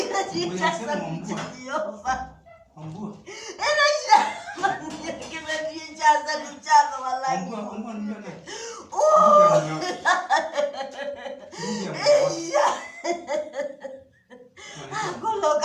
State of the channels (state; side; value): identical; both; correlation 1.00